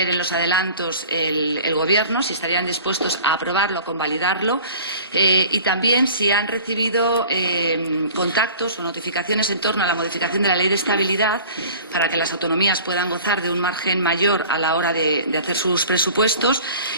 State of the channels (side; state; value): both; inverted; correlation -0.45